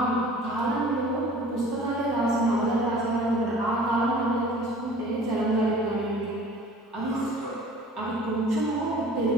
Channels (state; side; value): normal; both; correlation 0.47